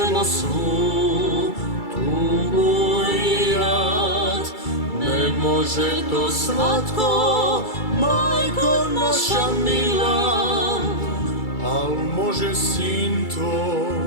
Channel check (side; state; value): right; late; 2.3 ms